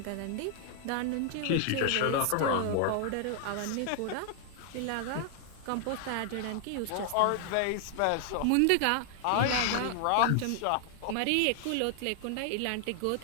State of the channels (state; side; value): different; both; correlation 0.00